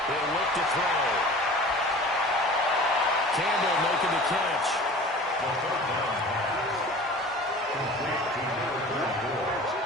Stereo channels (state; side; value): normal; both; correlation 0.41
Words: He'll look to throw. Campbell making the catch.